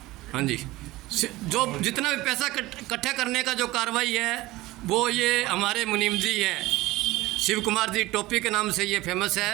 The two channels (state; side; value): quieter; left; 18.7 dB